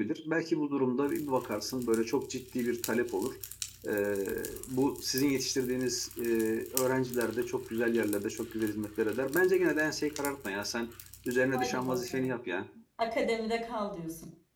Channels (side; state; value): both; identical; correlation 1.00